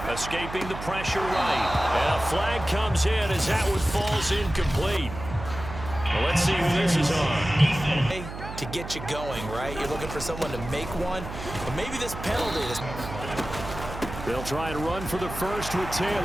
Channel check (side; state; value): right; noise; hum, 10 dB below the sound